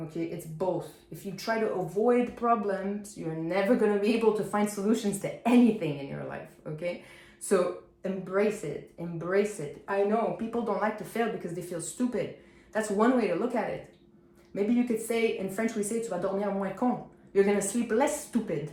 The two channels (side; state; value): both; identical; correlation 1.00